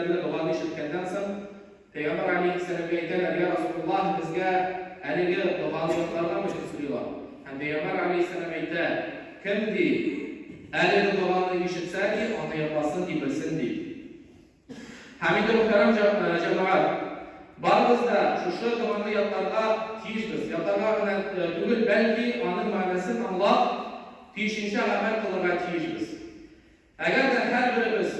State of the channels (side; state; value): both; identical; correlation 1.00